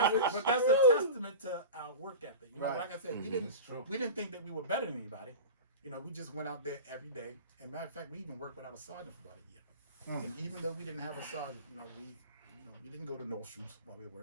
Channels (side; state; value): both; inverted; correlation -0.31